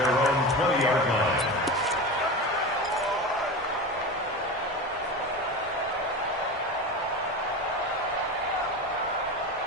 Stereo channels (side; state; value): both; normal; correlation 0.26